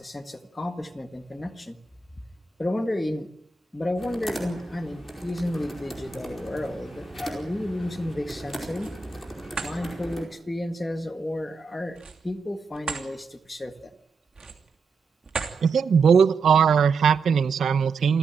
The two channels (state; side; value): quieter; left; 4.4 dB